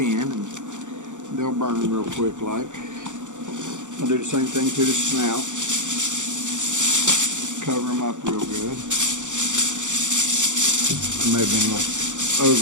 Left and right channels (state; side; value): late; left; 0.85 ms